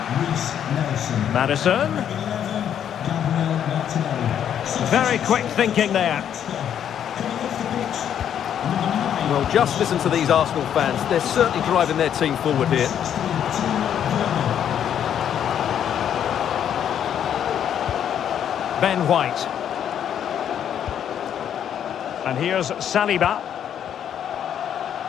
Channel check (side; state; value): right; quieter; 9.4 dB